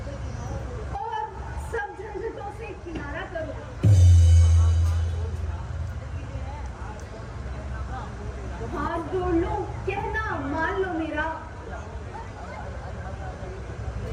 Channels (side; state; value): both; identical; correlation 1.00